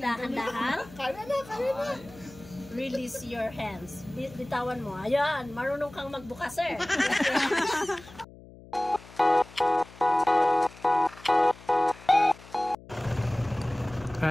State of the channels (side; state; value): left; noise; hum, 20 dB below the sound